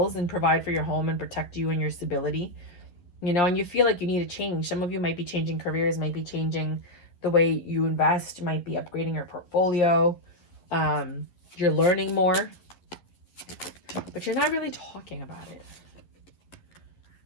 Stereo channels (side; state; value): right; late; 11 ms